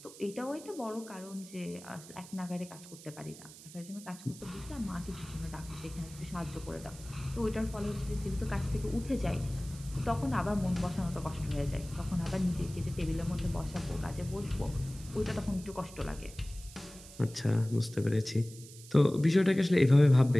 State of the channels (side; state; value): right; noise; hiss, 18 dB below the sound